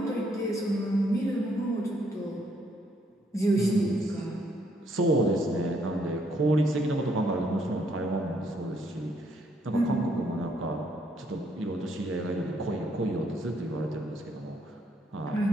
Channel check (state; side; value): normal; both; correlation 0.71